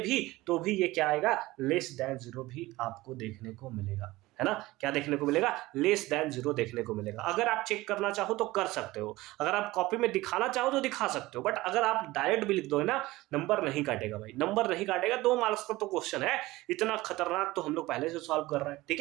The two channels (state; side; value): quieter; left; 19.0 dB